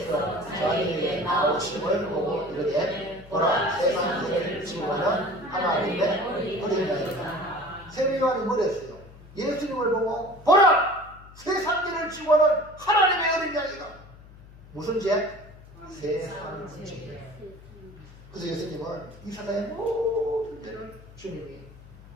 자기에게 나오심을 보고 이르되 보라 세상을 지우는 하나님의 어린 양이다. 세례 요한이 뭐랬어요? 예수님을 보고 보라 세상을 지우는 하나님의 어린 양이다. 무슨 죄? 세상 죄. 그래서 예수님은 이 세상의 모든 죄를 주님이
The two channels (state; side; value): noise; left; hum, 20 dB below the sound